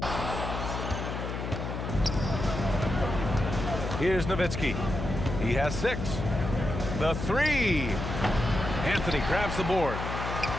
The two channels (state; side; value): noise; left; hum, 5 dB below the sound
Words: Here's Nowitzki. He has 6. The 3. Anthony grabs the board.